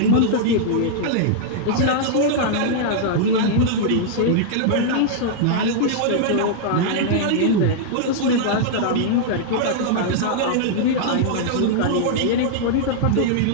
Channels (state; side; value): different; both; correlation -0.01